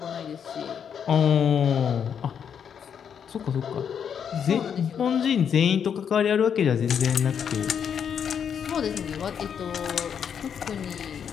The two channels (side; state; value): right; quieter; 7.8 dB